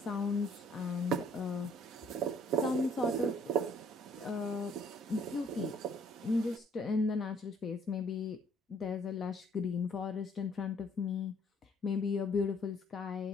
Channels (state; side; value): normal; both; correlation 0.61